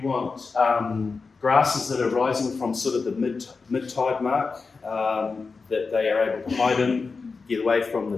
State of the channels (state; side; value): quieter; right; 4.5 dB